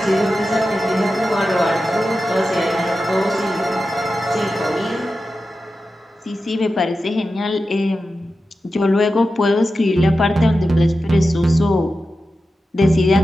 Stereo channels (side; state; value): both; normal; correlation 0.92